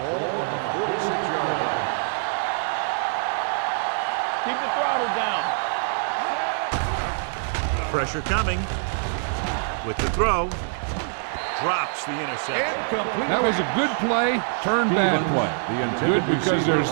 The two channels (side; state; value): left; silent; digital silence